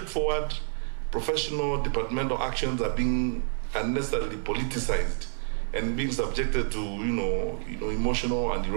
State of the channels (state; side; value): silent; left; 59 dB below the other